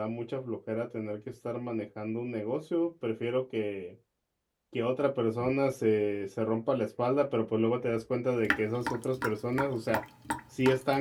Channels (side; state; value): both; identical; correlation 1.00